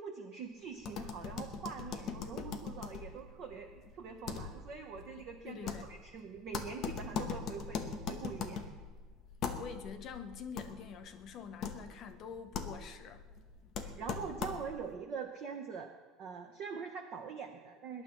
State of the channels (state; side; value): normal; both; correlation 0.37